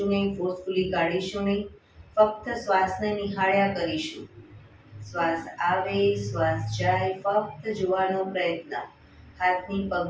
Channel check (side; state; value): both; identical; correlation 1.00